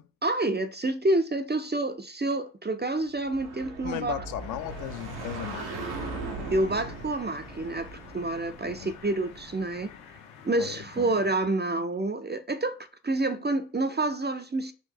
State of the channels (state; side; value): normal; both; correlation 0.36